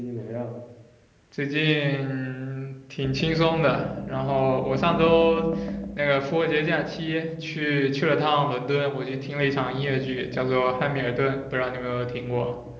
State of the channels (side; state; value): both; identical; correlation 1.00